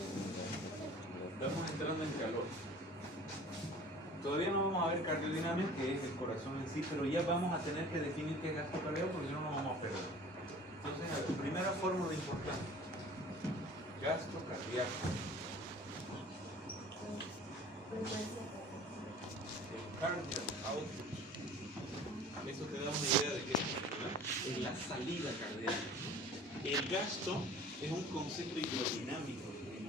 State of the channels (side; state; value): both; normal; correlation 0.45